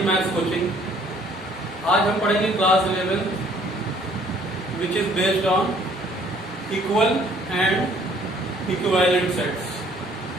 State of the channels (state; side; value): normal; both; correlation 0.60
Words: maths coaching. आज हम पढ़ेंगे class 11 which is based on equal and equivalent sets.